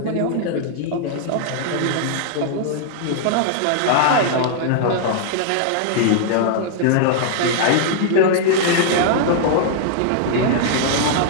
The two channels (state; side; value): different; both; correlation -0.01